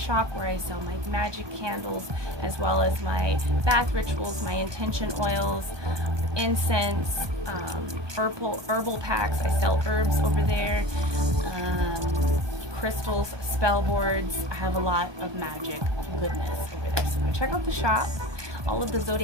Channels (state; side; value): late; left; 1.2 ms